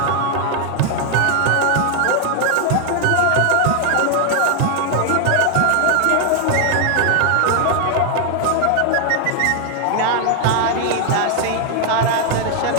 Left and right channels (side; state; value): both; different; correlation 0.00